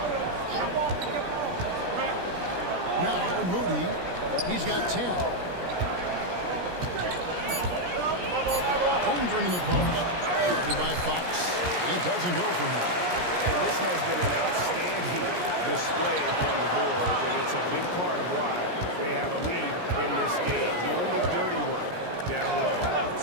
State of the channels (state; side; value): late; left; 17 ms